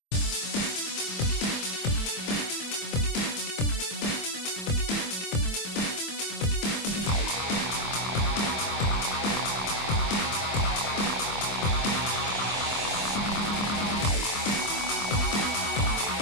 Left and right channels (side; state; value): right; late; 25 ms